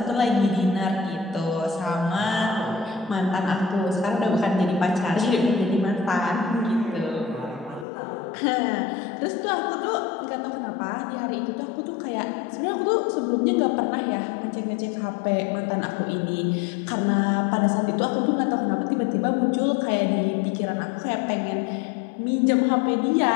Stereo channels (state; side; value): drops out; right; at 7.9 s